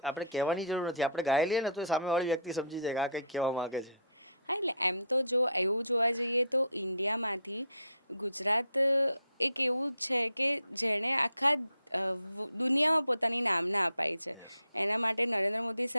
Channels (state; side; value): inverted; both; correlation -0.58